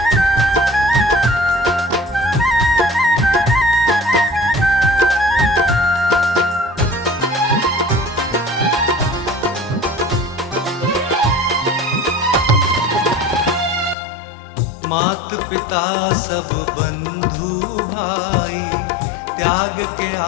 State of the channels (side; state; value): right; drops out; at 14.0 s